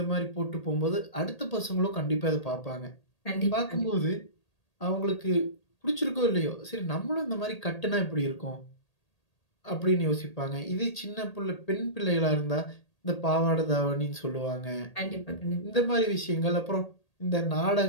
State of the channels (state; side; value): late; right; 1.8 ms